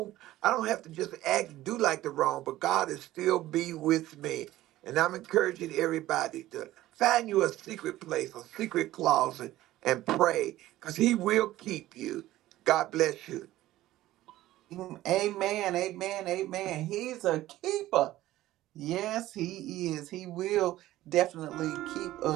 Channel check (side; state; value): left; quieter; 15.4 dB